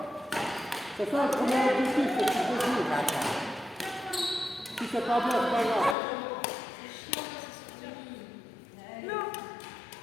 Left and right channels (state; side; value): drops out; right; at 6.0 s